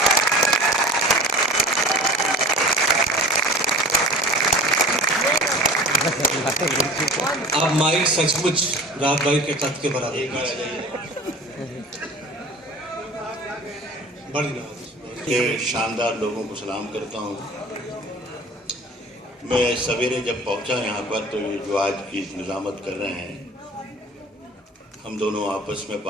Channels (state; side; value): normal; both; correlation 0.40